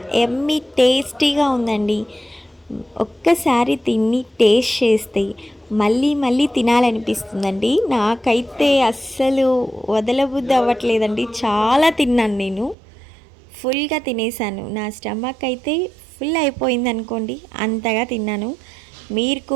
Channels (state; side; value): drops out; left; at 12.8 s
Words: ఎమ్మీ టేస్టీగా ఉందండి. ఒక్కసారి తిని టేస్ట్ చేస్తే మళ్ళీ మళ్ళీ తినాలనిపిస్తుందండి. నాకైతే అస్సలు వదలబుద్ధి అవ్వట్లేదండి. చాలా తిన్నాను నేను. ఫుల్గా తినేసాను. నా స్టమక్ అయితే ఫుల్ అయిపోయింది అనుకోండి, అంతగా తిన్నాను. మీరు